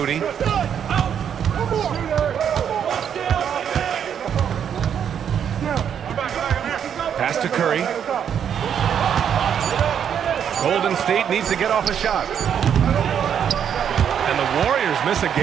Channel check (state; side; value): quieter; left; 8.4 dB